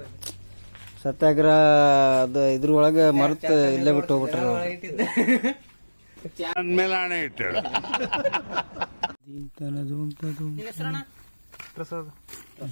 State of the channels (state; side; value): inverted; both; correlation -1.00